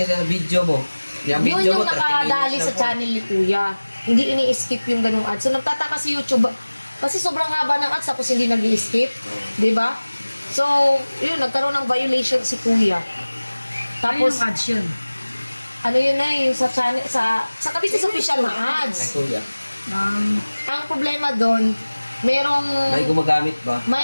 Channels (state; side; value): inverted; both; correlation -1.00